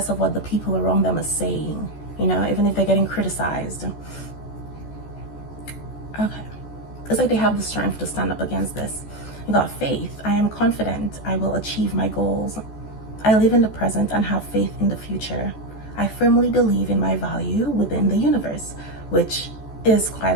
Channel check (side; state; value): right; late; 14 ms